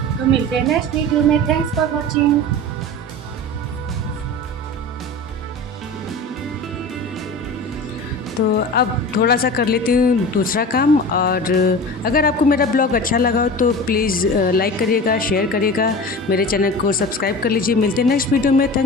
तो मिलते हैं नेक्स्ट वीडियो में। Thanks for watching. तो अब थोड़ा सा कर लेती हूँ दूसरा काम। और अगर आपको मेरा ब्लॉग अच्छा लगा हो तो प्लीज़ लाइक करिएगा, शेयर करिएगा, मेरे चैनल को सब्सक्राइब कर लीजिए। मिलते हैं नेक्स्ट वीडियो में।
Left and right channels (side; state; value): both; normal; correlation 0.34